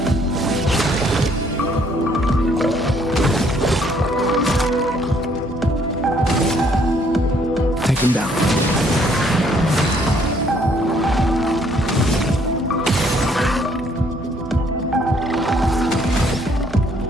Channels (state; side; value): normal; both; correlation 0.65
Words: Take them down.